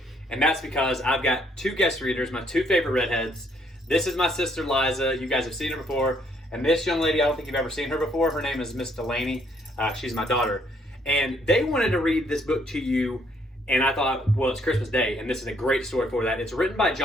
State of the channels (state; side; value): normal; both; correlation 0.68